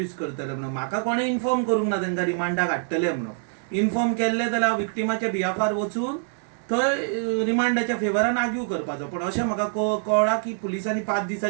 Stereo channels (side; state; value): left; silent; digital silence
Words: करतले म्हणून. म्हाका कोणें इन्फॉर्म करूंक ना तांकां रिमांडाक हाडटले म्हणून. इन्फॉर्म केल्ले जाल्यार हांव विक्टिमाच्या बिहाफार वचून थंय रिमांडाच्या फेवरान आर्ग्यू करपाचो. पण अशें म्हाका कळ्ळां की पुलिसांनी 5